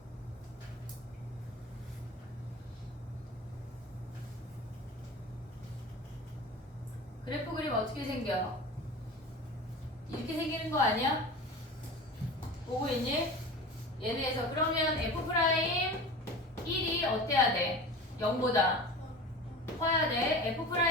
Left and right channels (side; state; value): both; normal; correlation 0.34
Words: 그래프 그림 어떻게 생겨? 이렇게 생기는 거 아니야? 보고 있니? 얘네에서 그러면 F'1이 어때야 돼? 0보다 커야 돼.